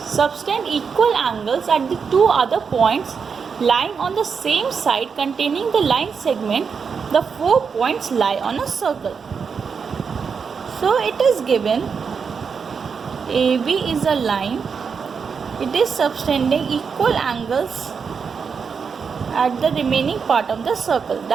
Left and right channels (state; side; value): quieter; left; 6.0 dB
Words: subtend equal angles at the two other points lying on the same side containing the line segment, the 4 points lie on a circle. So it is given AB is a line. It is subtending equal angles at the remaining part of the circle.